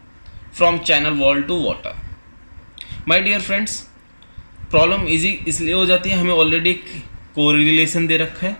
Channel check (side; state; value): both; inverted; correlation -1.00